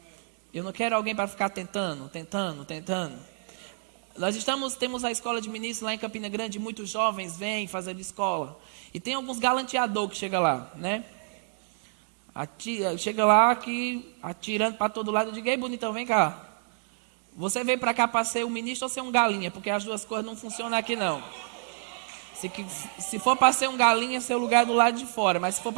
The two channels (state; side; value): silent; left; 58 dB below the other